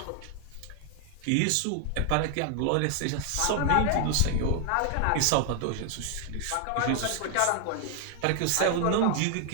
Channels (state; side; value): different; both; correlation 0.00